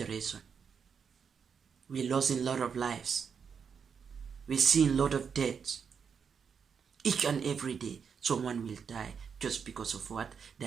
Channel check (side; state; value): left; quieter; 6.6 dB